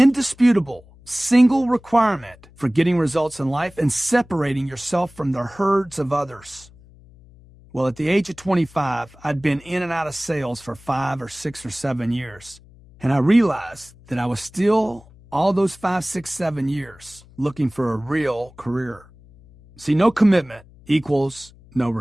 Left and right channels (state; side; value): noise; left; hum, 25 dB below the sound